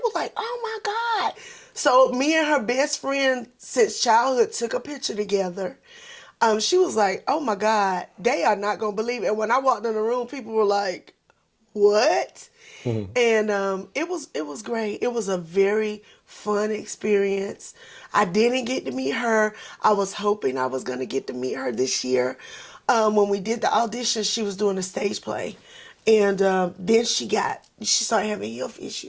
like, oh my God. So me and her best friend since childhood took a picture together. She was like, oh my God, they are not going to believe it. And when I walked in the room, people were like, what? And it was great. It was a very fun experience. I didn't get to meet her. I was hoping I was going to get to meet her this year. When we did the audition, she was doing a stage play. And then she started having health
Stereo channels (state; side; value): identical; both; correlation 1.00